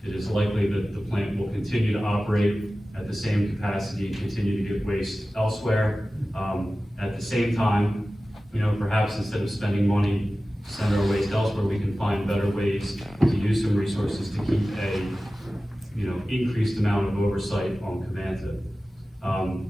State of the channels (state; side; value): normal; both; correlation 0.96